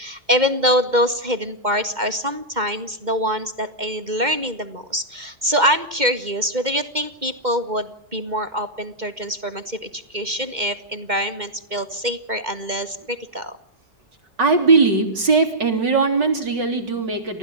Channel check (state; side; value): late; left; 2.1 ms